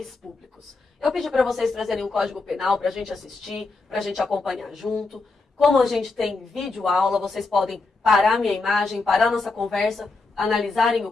públicos. Eu pedi para vocês trazerem o Código Penal para a gente assistir, para a gente acompanhar junto. Como a gente tem vídeo aula, vocês podem parar minha imagem, parar nossa conversa, analisarem o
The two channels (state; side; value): quieter; right; 3.7 dB